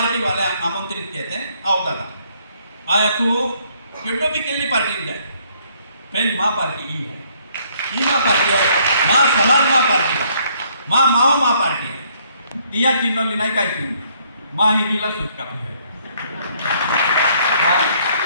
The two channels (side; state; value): both; inverted; correlation -0.66